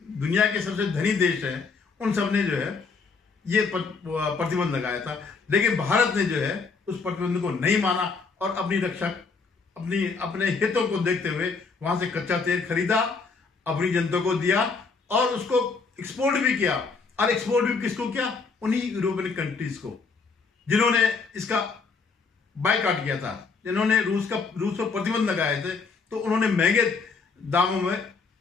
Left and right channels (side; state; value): right; quieter; 4.7 dB